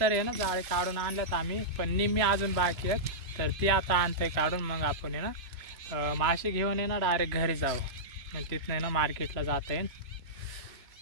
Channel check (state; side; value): late; left; 3.0 ms